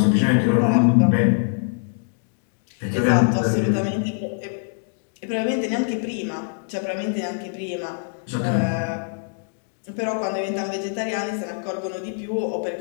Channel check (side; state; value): right; silent; digital silence